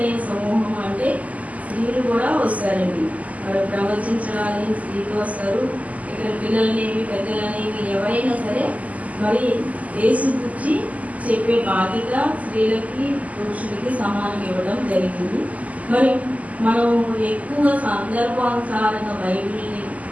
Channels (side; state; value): left; late; 0.073 ms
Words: సమూహం అంటే స్త్రీలు కూడా వస్తారండి. మరి ప్రవచించడానికి స్త్రీలు వస్తారు. ఇక్కడ పిల్లలనేవి పెద్దలనేవి ఎవరైనా సరే మరి యేసు గురించి చెప్పే బాధ్యత స్త్రీలకి పురుషులకి సమానం ఇవ్వడం జరిగింది. మరి మనం ఎక్కువ సందర్భానుసారంగా బైబిల్ని